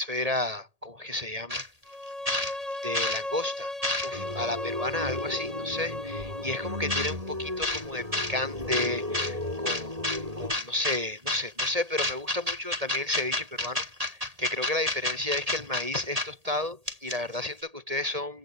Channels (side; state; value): left; late; 1.8 ms